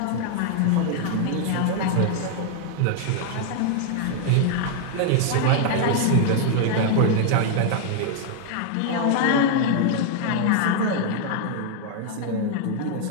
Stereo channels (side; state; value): both; different; correlation 0.00